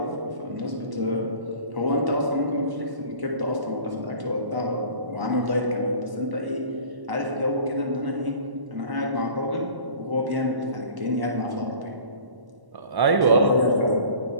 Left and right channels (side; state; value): left; late; 1.1 ms